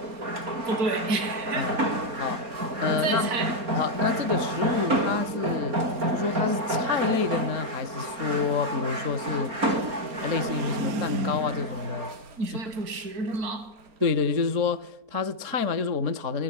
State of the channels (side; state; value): left; late; 4.3 ms